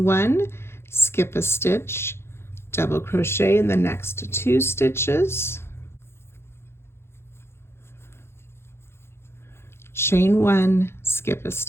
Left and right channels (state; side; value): late; right; 0.12 ms